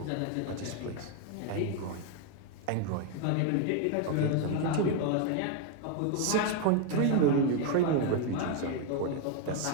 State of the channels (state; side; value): different; both; correlation 0.01